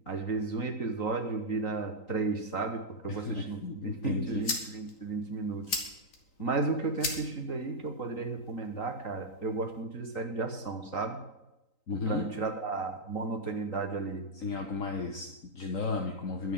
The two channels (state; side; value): late; right; 3.9 ms